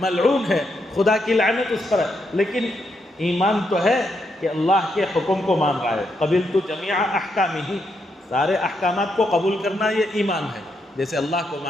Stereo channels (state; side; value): normal; both; correlation 0.80